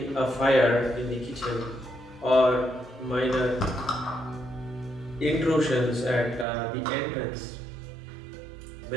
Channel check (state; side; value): drops out; left; at 6.5 s